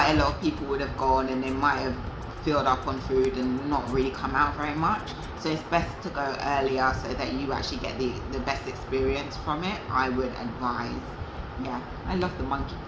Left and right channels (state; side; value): identical; both; correlation 1.00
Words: a lot of people would have gone and they might have filled up on food and not really come out very much. So it's best to go earlier so that you actually get the best experience from it, I would advise. Yeah, I love the Monkey